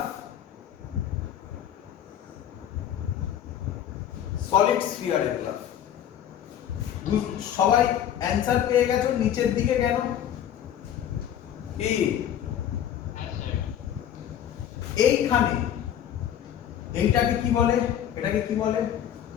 সলিড স্ফিয়ারের গ্রাফ। সবাই অ্যানসার পেয়ে গেছো? নিচের দিকে কেন? কি এইখানে এইটাকে কি বলে? এটাকে কি বলে?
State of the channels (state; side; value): quieter; right; 10.1 dB